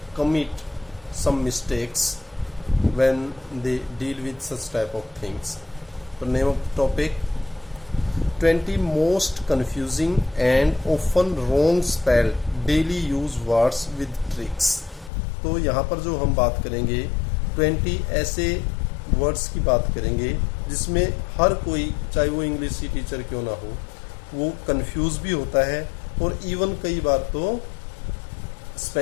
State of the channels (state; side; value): drops out; right; at 15.1 s